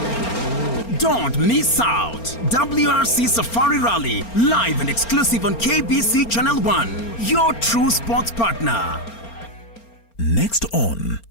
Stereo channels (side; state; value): right; late; 4.4 ms